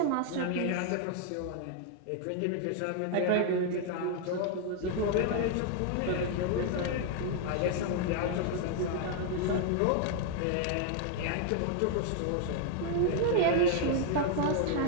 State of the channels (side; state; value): both; different; correlation 0.00